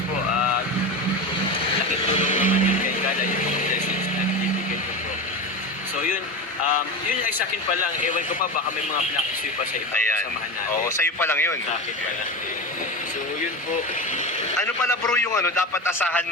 po. Laking tulong naman yun kay Carla yung mga blessings na binibigay ko po. So yun. Yun ay sa akin pa lang. Ewan ko pa baka may mga pinakisuyo pa sa iba. Samahan natin. Oo, sa'yo pa lang yun. Sa akin pa lang. So yun po. Ano pala bro yung dapat asahan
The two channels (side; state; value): both; normal; correlation 0.23